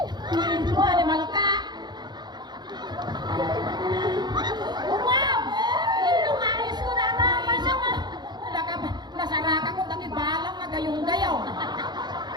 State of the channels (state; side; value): late; left; 0.21 ms